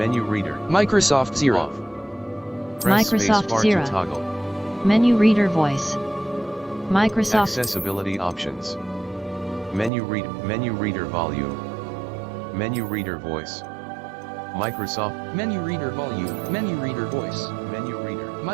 reader. Microsoft Zero. Off. Press Microsoft spacebar Zero. to toggle. Menu reader voice. Microsoft. Accessibility options. Menu reader volume. Menu reader voice. Microsoft. Menu reader volume. Menu reader voice. Menu reader.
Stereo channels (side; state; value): left; drops out; at 9.9 s